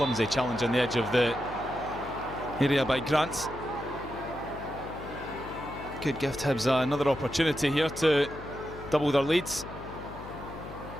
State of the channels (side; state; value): left; noise; hum, 13 dB below the sound